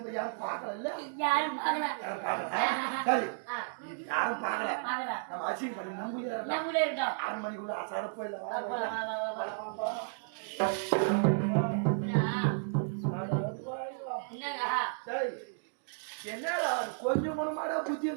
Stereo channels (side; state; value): left; silent; digital silence